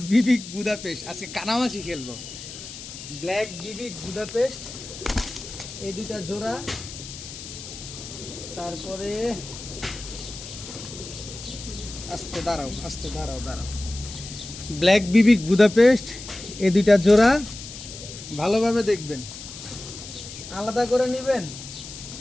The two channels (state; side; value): noise; left; hiss, 12 dB below the sound